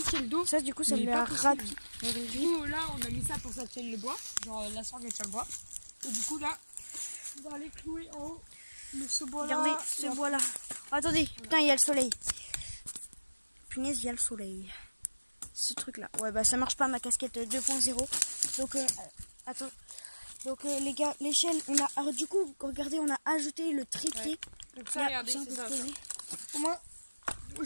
le dos. Ça du coup ça Mais lui pas a raté. Du coup là on a mis ça pour que ça tienne le bois. Genre la sangle elle tient le bois. Et du coup là, on va aller clouer en haut ce bois là. Regardez ce bois là. Attendez, putain il y a le soleil. Punaise, il y a le soleil. Ce truc là. Ouais bah ça marche pas ma casquette 2.0. Donc attends. Donc les gars, l'échelle, on a... Alors, du coup, regardez, on a ajouté le trépied. Ouais. Donc ça, regardez, c'est ça. Au moins,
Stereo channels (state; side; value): inverted; both; correlation -1.00